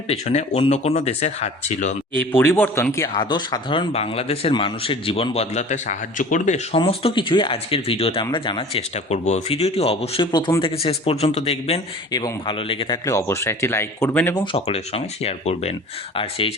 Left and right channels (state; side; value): normal; both; correlation 0.43